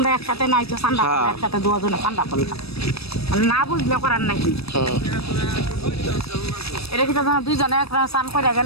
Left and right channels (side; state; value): right; late; 0.78 ms